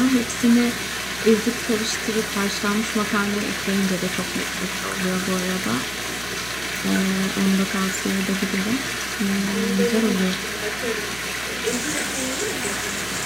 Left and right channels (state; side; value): noise; right; hum, 17 dB below the sound